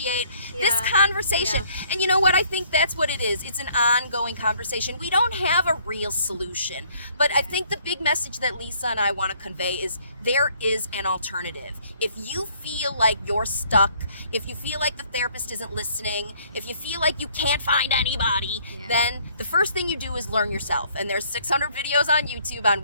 this Yeah. conversation. Yeah. And you know what? I think that's what it is. It's an ongoing conversation. We don't have a real solution, but I think the big message that Lisa and I want to convey is there is an alternative. If you feel like you're stuck, if you feel like the therapist isn't listening, if you feel like you can't find anybody, then the first thing you do is learn yourself. And there's 600 videos on YouTube on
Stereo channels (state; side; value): inverted; both; correlation -0.63